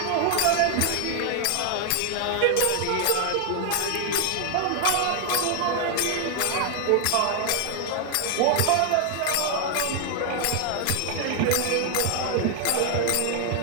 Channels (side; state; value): both; different; correlation 0.00